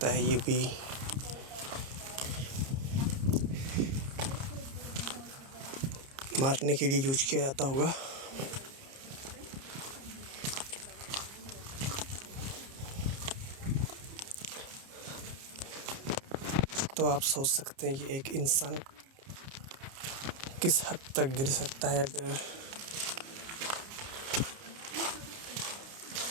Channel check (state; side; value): late; left; 30 ms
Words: है ये भी मारने के लिए यूज किया जाता होगा। तो आप सोच सकते हैं कि एक इंसान किस हद तक गिर सकता है अगर